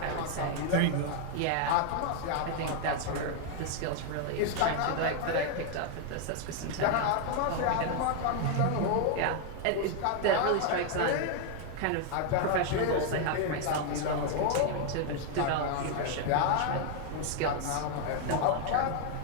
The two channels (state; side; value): different; both; correlation 0.00